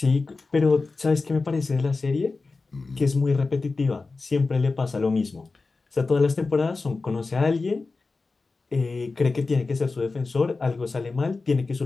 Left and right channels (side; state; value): right; quieter; 3.9 dB